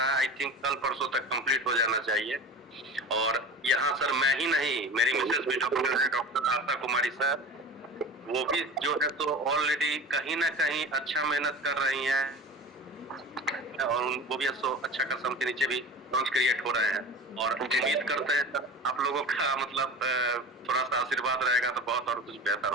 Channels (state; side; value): normal; both; correlation 0.34